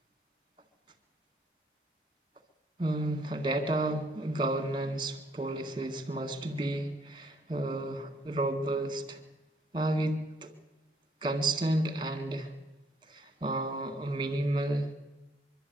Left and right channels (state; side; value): normal; both; correlation 0.66